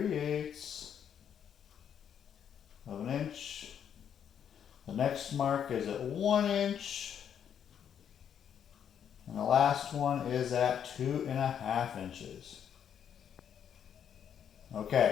of an inch. The next mark is at 1 inch. And the last one is at 2.5 inches.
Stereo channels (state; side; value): quieter; right; 8.6 dB